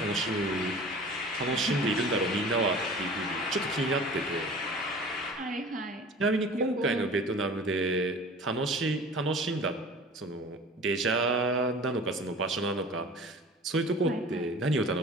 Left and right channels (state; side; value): normal; both; correlation 0.42